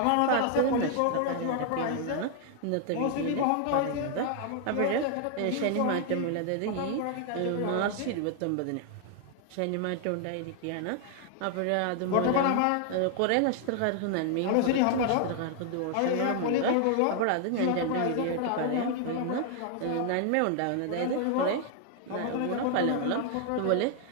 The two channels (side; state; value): both; different; correlation 0.00